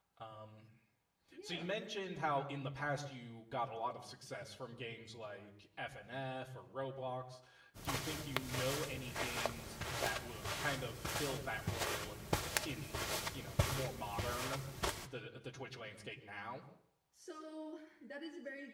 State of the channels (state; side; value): identical; both; correlation 1.00